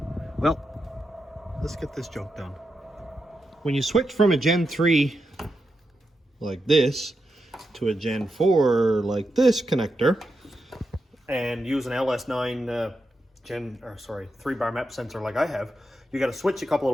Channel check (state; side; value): normal; both; correlation 0.87